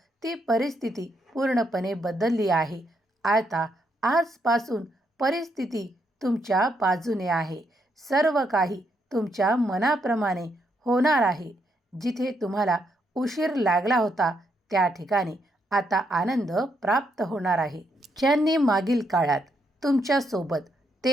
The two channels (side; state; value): both; normal; correlation 0.77